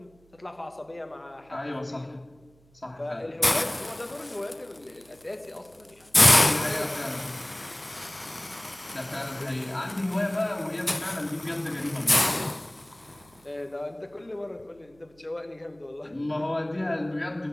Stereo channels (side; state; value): right; noise; hum, 30 dB below the sound